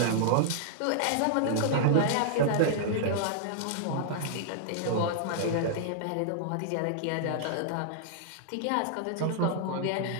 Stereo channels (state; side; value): different; both; correlation -0.01